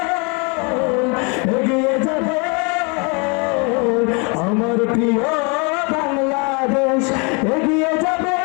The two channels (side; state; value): right; quieter; 32.8 dB